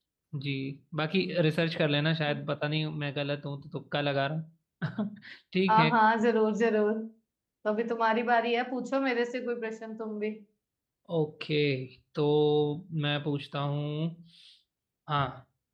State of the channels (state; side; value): identical; both; correlation 1.00